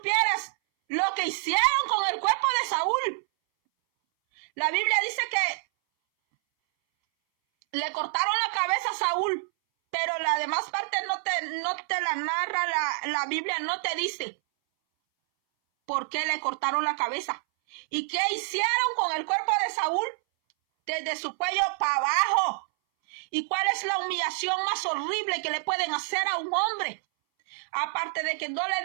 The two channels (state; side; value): silent; left; 60 dB below the other